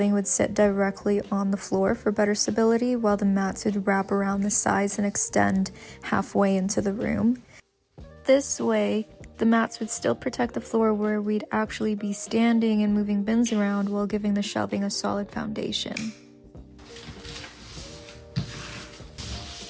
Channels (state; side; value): identical; both; correlation 1.00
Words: would sit directly on the floor for better stability, while the mats would wrap around the sides and extend halfway into the room. This way, the mats would still protect the floor where we'd actually be standing and moving bins around while giving the shelving a solid foundation.